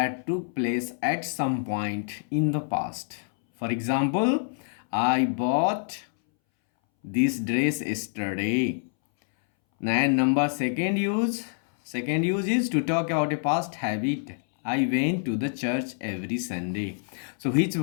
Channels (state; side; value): silent; right; 60 dB below the other